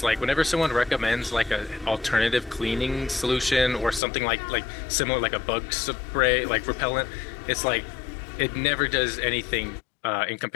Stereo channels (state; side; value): drops out; right; at 4.0 s